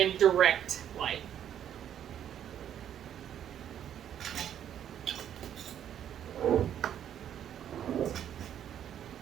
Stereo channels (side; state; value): left; quieter; 9.9 dB